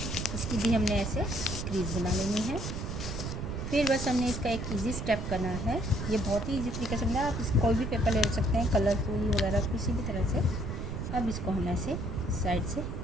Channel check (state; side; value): noise; right; rumble, 4 dB below the sound